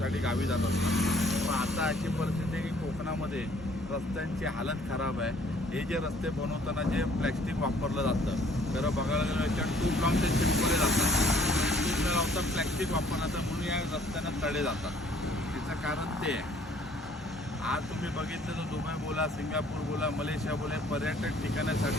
गावी जात असतात. पण आता अशी परिस्थिती आहे की कोकणामध्ये रस्त्यांची हालत खराब आहे. हे जे रस्ते बनवताना जे प्लॅस्टिक वापरलं जातं, खरं बघायला गेलं याच्यात ट्यूब लावून ते चिपकवले जातात. ट्यूब न लावता प्लॅस्टिक वापरलं तर म्हणून या रस्त्यांना तडे जातात. त्याचं कारण ते आहे. आज तुम्ही बघितलं तर दुबई बोला, सिंगापूर बोला, मलेशिया बोला, पर्यटक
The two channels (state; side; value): normal; both; correlation 0.59